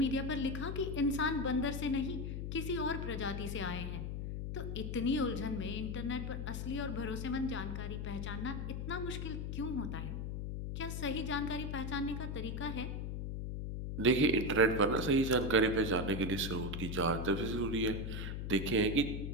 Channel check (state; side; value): noise; left; hum, 4 dB below the sound